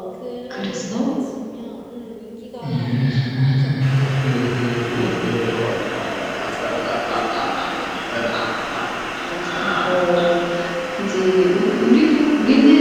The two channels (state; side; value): identical; both; correlation 1.00